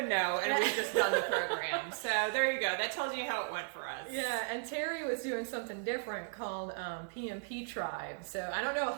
know, and we've just done the program. So there you go. That tells you how it went for us. Yeah, and Terry was doing something different called PMP Tribe. So I don't know a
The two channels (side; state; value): left; silent; 54 dB below the other